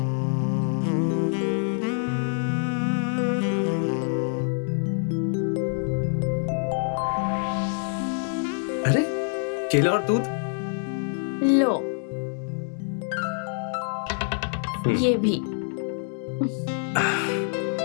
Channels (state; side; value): silent; right; 57 dB below the other